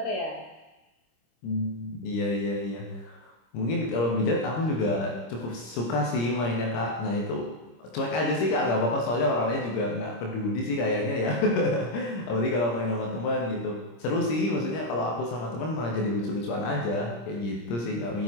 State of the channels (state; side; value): late; right; 26 ms